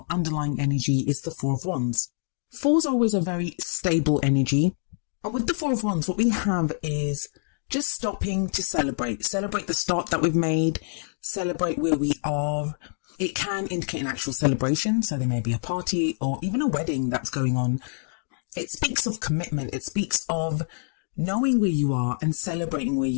underlying energy is the Four of Wands. Fours are always a very stable energy. And with the Four of Wands, what we have is just stopping to celebrate. Celebrate the start that we've made. Celebrate where we are. It can indicate an actual celebration. So there may be a party or even a wedding that's going on. It speaks of commitment. It speaks of knowing where you are and celebrating where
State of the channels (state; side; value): silent; right; digital silence